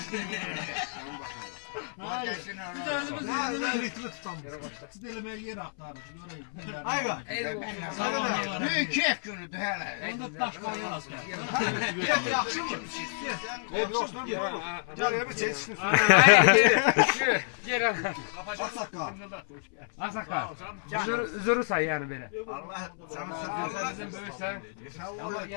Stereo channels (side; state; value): right; silent; 58 dB below the other